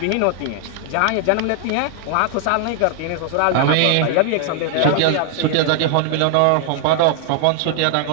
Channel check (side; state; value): both; different; correlation 0.00